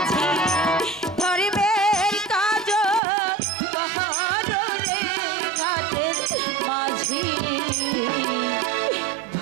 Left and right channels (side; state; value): left; drops out; at 3.0 s